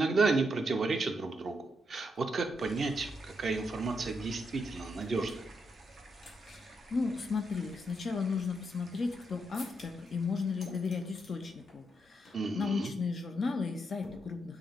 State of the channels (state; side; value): normal; both; correlation 0.80